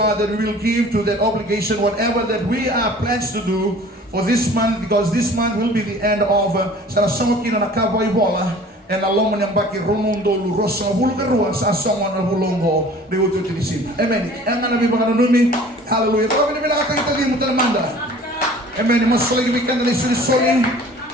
that we will give to that obligation whatever that we are pledged to do for this month, because this month will be the end of Sarasamokin and Akaboy Bola and Alomon and Baki Romundo Rosa Bulgarua, Sasaman of Bulongo, they will do this. Amen. And I'm going to be hallelujah. Amen. Mas lagi bikin dari suri-suri,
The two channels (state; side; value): normal; both; correlation 0.47